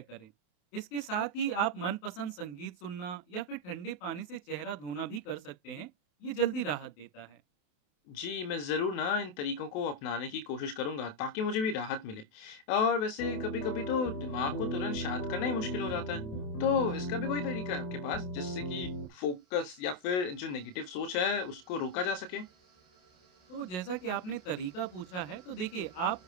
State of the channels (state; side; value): late; right; 28 ms